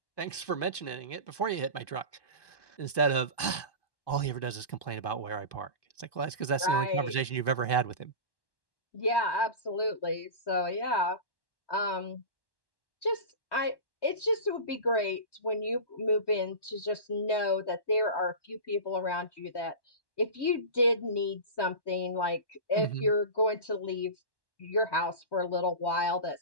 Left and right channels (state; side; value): late; right; 1.1 ms